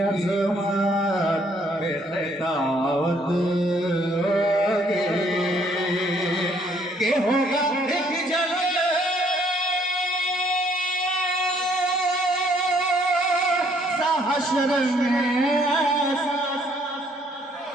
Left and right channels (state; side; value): normal; both; correlation 0.65